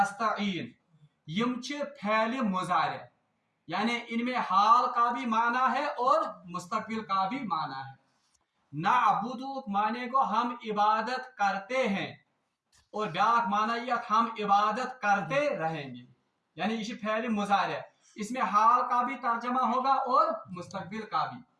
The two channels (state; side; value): identical; both; correlation 1.00